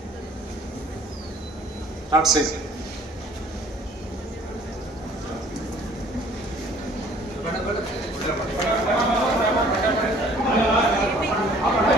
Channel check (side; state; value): both; normal; correlation 0.55